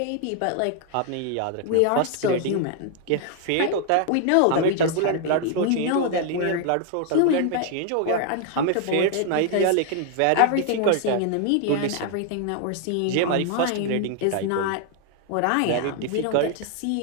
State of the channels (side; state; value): both; different; correlation 0.00